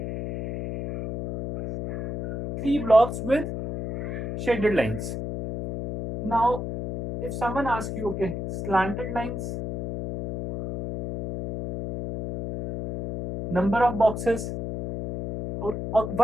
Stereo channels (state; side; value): noise; left; hum, 5 dB below the sound